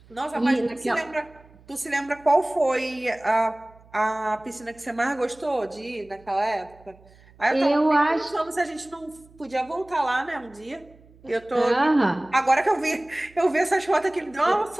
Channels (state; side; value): noise; right; hum, 26 dB below the sound